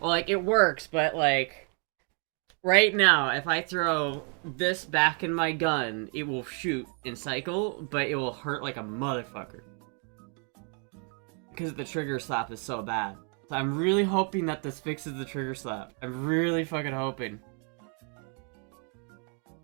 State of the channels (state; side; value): quieter; left; 39.6 dB